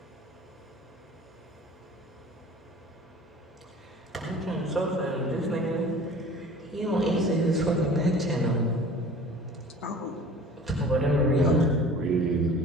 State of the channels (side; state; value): both; normal; correlation 0.44